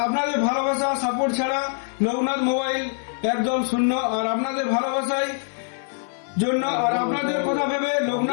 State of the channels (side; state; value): right; silent; 61 dB below the other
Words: আপনাদের ভালোবাসা সাপোর্ট ছাড়া লোকনাথ মোবাইল একদম শূন্য। আর আপনাদের ভালোবাসায় জন্য আর আপনাদের কথা ভেবে